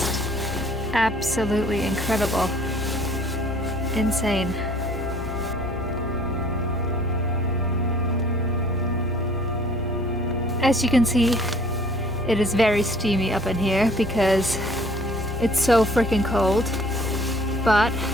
absolutely incredible. Insane. As you can see, it is very steamy up in here because it's so freaking cold. But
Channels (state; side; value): normal; both; correlation 0.55